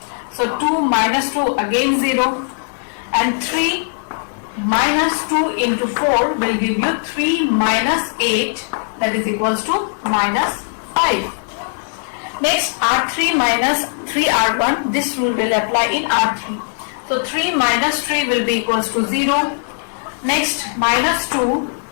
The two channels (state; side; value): silent; right; digital silence